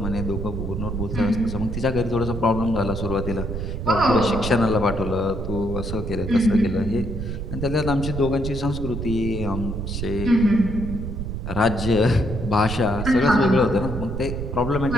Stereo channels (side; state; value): right; noise; rumble, 5 dB below the sound